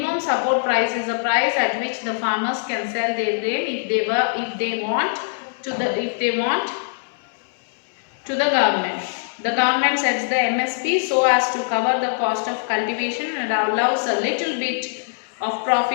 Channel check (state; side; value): silent; right; digital silence